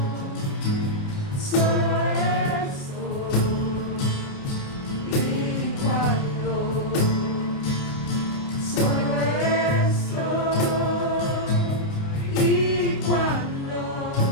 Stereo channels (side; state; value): right; late; 29 ms